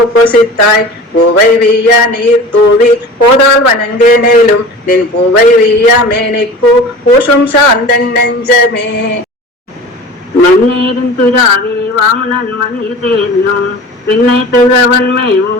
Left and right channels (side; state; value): both; normal; correlation 0.38